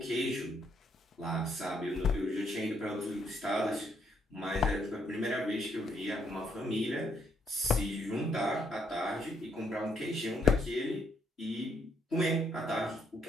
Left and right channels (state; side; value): normal; both; correlation 0.73